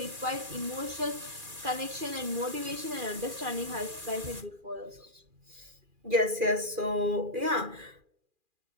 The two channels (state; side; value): late; left; 2.4 ms